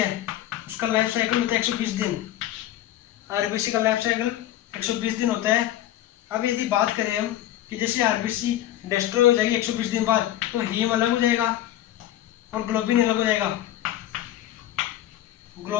उसका लाइफ साइकिल होता है 120 दिन, आरबीसी का लाइफ साइकिल 120 दिन होता है। अब यदि बात करें हम कि जैसे आरबीसी डिस्ट्रॉय हो जाएगी 120 दिन बाद, तो हीम अलग हो जाएगा और ग्लोबिन अलग हो जाएगा।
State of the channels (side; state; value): right; quieter; 13.1 dB